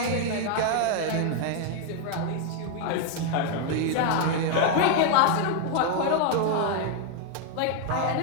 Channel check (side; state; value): both; different; correlation 0.00